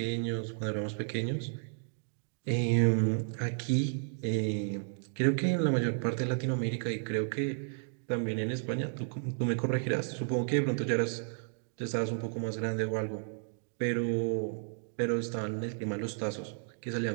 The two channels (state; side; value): silent; left; digital silence